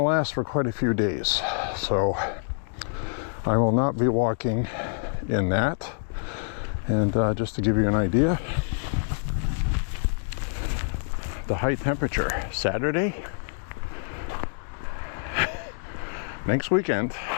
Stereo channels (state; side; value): silent; right; digital silence